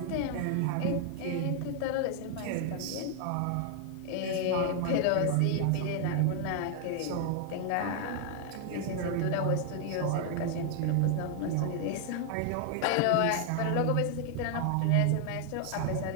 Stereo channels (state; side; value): different; both; correlation 0.00